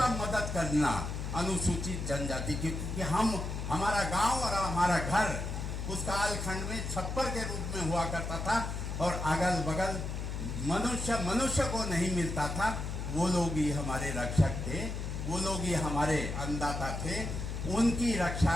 मदद करना, अनुसूचित जनजाति की, क्योंकि हमारा गांव और हमारा घर उस कालखंड में छप्पर के रूप में हुआ करता था और अगल बगल मनुष्य को नहीं मिलता था। वो लोग ही हमारे रक्षक थे, वो लोग ही हमारे अन्नदाता थे। उनकी रक्षा,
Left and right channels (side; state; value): left; noise; hum, 4 dB below the sound